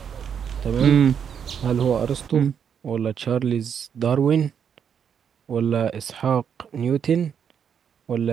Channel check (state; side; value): quieter; left; 7.8 dB